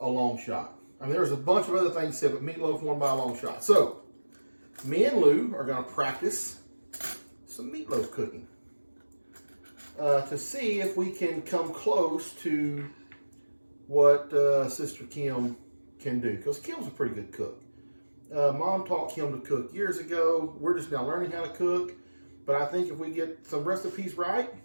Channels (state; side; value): inverted; both; correlation -1.00